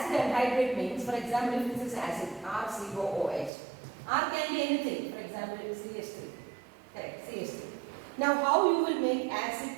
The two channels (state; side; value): drops out; left; at 3.5 s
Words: anhydride means, for example, if this is acid, RCOOH. R can be anything, for example, it is CH3. Correct, CH3. Now how you will make